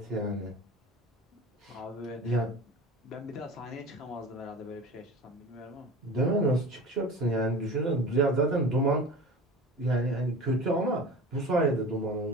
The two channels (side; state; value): both; normal; correlation 0.36